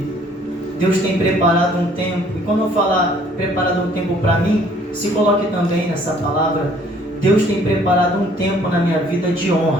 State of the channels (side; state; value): both; normal; correlation 0.59